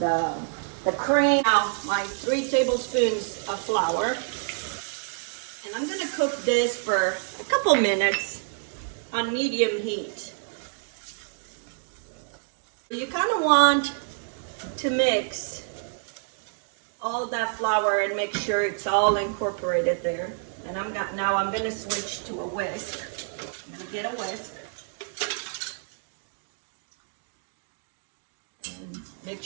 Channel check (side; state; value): left; silent; 60 dB below the other